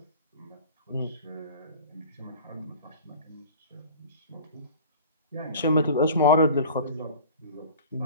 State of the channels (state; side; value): inverted; both; correlation -0.41